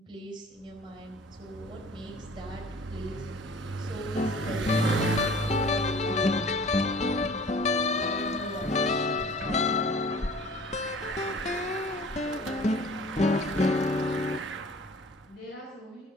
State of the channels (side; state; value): both; normal; correlation 0.47